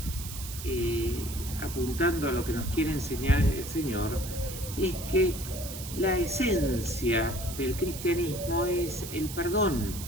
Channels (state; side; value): noise; right; hiss, 10 dB below the sound